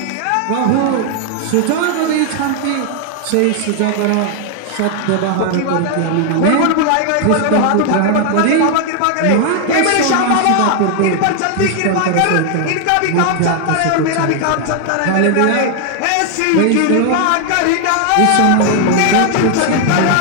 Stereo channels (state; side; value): different; both; correlation 0.00